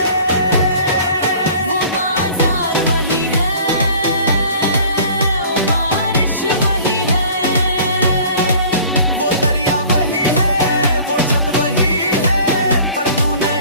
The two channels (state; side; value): inverted; both; correlation -0.47